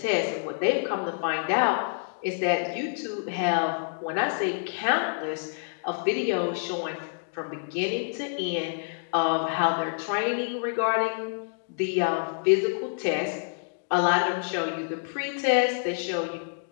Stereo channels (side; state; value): right; silent; digital silence